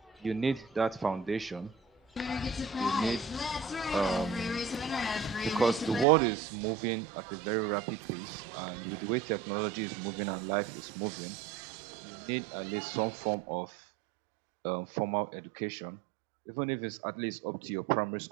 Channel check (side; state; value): left; drops out; at 6.1 s